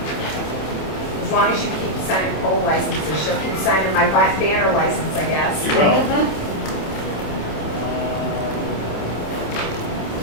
as long as you keep signing poll licenses, she'll keep signing my banner license, I guess. You will.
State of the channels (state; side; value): late; right; 27 ms